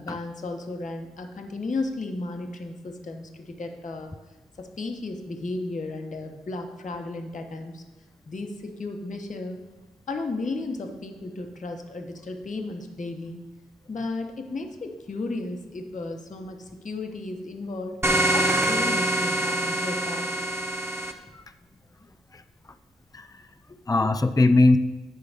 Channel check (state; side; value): normal; both; correlation 0.77